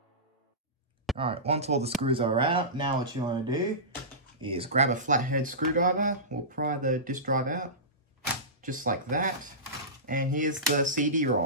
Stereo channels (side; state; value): both; normal; correlation -0.19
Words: Alright, once all the screws are out, now what you want to do is grab a flathead screwdriver. We'll pry the disk drive out, just like that. And here's the